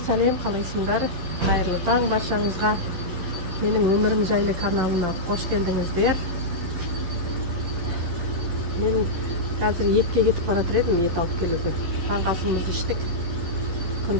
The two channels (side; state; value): left; late; 12 ms